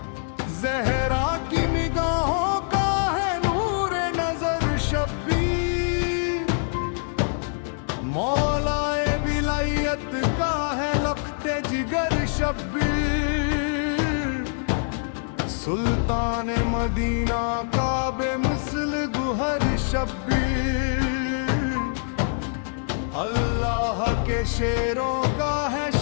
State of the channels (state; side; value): silent; right; digital silence